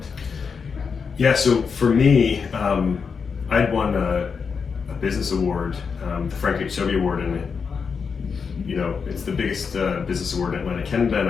Yeah, so for me, I'd won a business award, the Frank H. Sobey Award, and it's the biggest business award in Atlantic Canada, and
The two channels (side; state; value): right; quieter; 5.7 dB